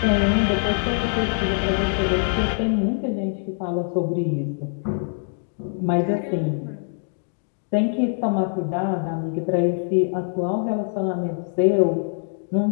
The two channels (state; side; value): silent; right; 63 dB below the other